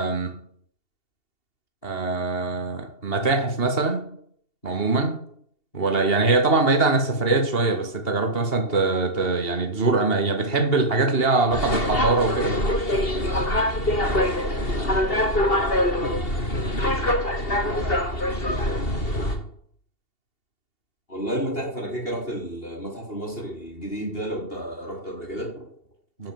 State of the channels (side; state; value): right; late; 2.7 ms